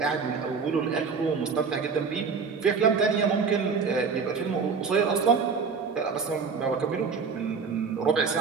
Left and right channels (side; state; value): left; quieter; 5.4 dB